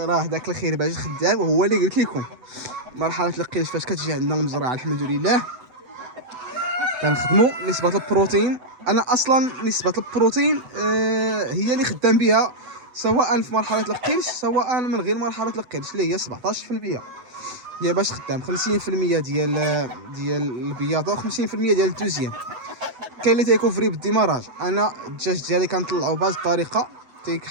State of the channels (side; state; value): left; late; 8.0 ms